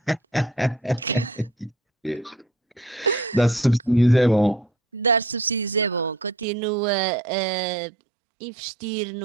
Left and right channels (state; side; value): drops out; left; at 6.5 s